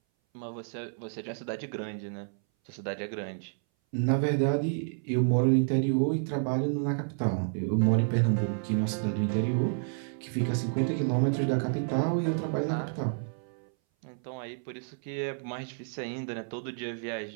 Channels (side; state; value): left; silent; 58 dB below the other